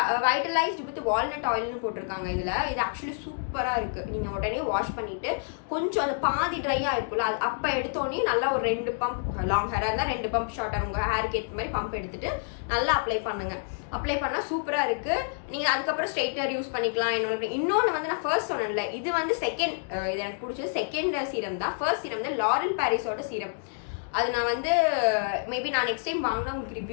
வைட்டலைஸ்டு வித் வால்நட் ஆயில்னு போட்டிருக்காங்க. இது ஆக்சுவலி சூப்பராக இருக்குது. நீங்கள் உடனே வாஷ் பண்ணிவிட்டு கொஞ்சம் அந்த பாதி ட்ரையாக இருக்குல்ல, அது அப்போ எடுத்தோடனே நல்லா ஒரு 2 பம்ப், லாங் ஹேராக இருந்தால் 2 பம்ப், ஷார்ட்டாக உங்கள் ஹேருக்கு ஏற்ற மாதிரி பம்ப் எடுத்துகிட்டு நல்லா அப்ளை பண்ணுங்கள். அப்ளை பண்ணால் சூப்பராக இருக்குது. நீங்கள் அதுக்கப்புறம் ஸ்ட்ரைட்னர் யூஸ் பண்ணிக்கலாம். இன்னொன்று வந்து நான் ஃபர்ஸ்ட் சொன்னேன்ல, இது வந்து செகண்ட், இது எனக்கு பிடிச்சது செகண்ட் சீரம் தான். ஃபர்ஸ்ட் சீரம் வந்து லாரல் பாரிஸோட சீரம். அது நான் வந்து மேபி நான் நெக்ஸ்ட் டைம் வாங்கினா உங்களுக்கு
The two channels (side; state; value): right; silent; digital silence